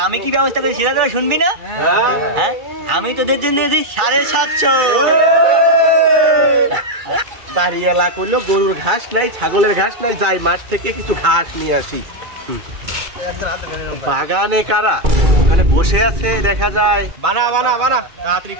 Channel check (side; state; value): left; late; 2.3 ms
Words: আমি কি ব্যবস্থা করেছি সেটা তোরা শুনবি না? হ্যাঁ, আমি তোদের জন্য এনেছি 750। বাড়ি এলা করলো, গরুর ঘাস নাই, ছাগলের ঘাস নাই, যাই মাঠ থেকে কিছু ঘাস নিয়ে আসি। বাগানে কারা ওখানে বসে আছে দেখা যায়। বানা বানা বানা, তাড়াতাড়ি